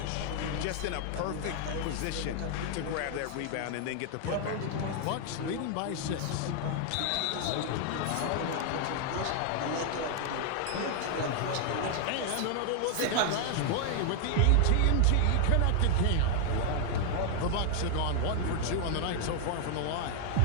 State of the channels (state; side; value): different; both; correlation 0.00